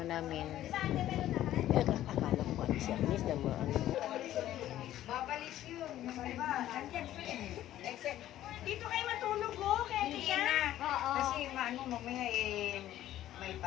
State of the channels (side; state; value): right; quieter; 13.1 dB